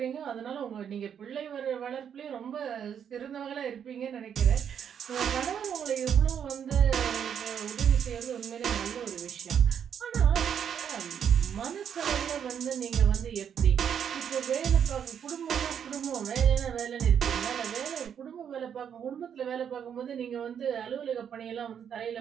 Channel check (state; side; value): quieter; left; 8.2 dB